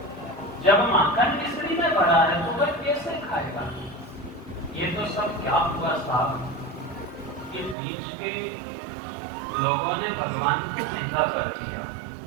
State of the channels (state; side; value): drops out; left; at 7.8 s